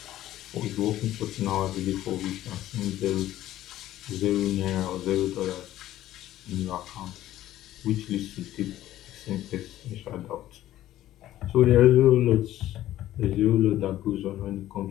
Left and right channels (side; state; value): right; quieter; 13.8 dB